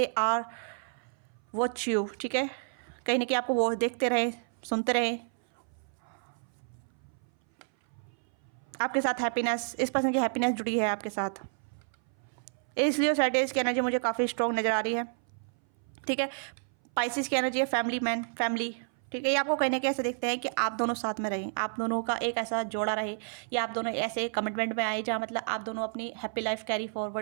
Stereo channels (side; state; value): left; silent; 58 dB below the other